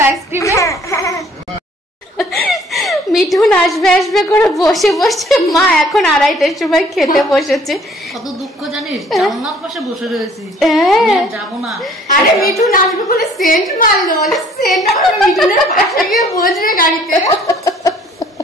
আইসক্রিমে? মিঠুন আসবে আসবে করে বসে বসে মা এখন 2:30টার সময় খেতে বসেছে। কত দুঃখ জানিস, জানলার পাশে বসে রয়েছি, যাবো না। আরে মিঠুন আসবে বলে সেন্ট মারলো, বলে সেন্ট আমার মিঠুনের পাশে গিয়ে বসবে গাড়িতে।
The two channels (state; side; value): normal; both; correlation 0.57